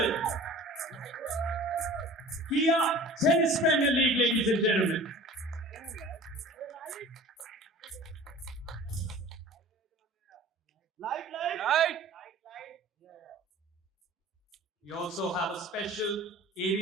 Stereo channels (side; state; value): both; normal; correlation 0.42